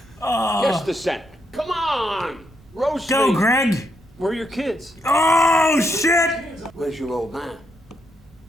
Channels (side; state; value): both; normal; correlation 0.79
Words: Guess the scent. Come on! Roast Go, me. Greg! Where are your kids? Oh, shit! Where's your old man?